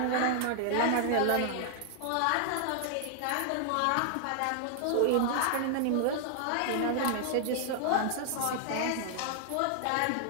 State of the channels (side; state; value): both; different; correlation -0.01